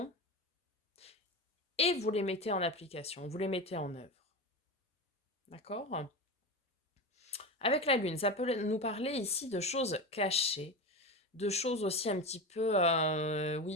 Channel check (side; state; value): both; normal; correlation 0.23